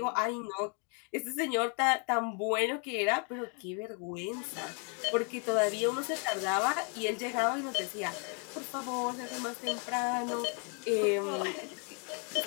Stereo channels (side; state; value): right; quieter; 37.8 dB